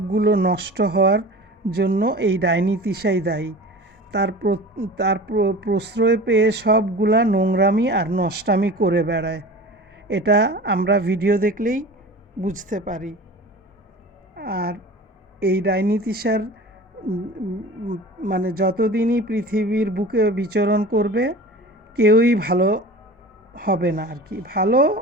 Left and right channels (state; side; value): normal; both; correlation 0.37